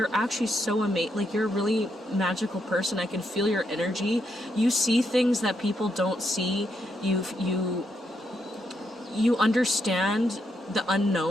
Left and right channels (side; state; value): both; normal; correlation 0.79